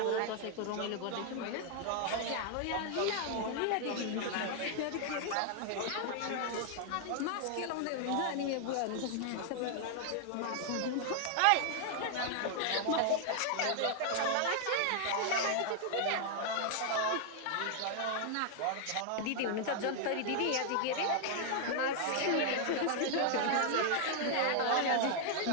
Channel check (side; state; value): both; different; correlation 0.00